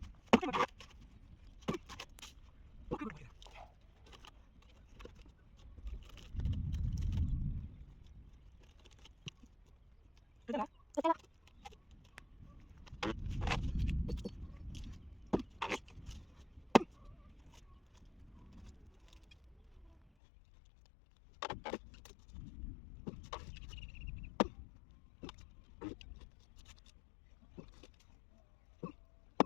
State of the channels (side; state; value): right; drops out; at 20.0 s